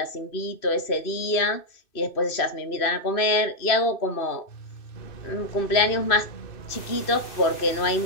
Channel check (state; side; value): late; right; 2.6 ms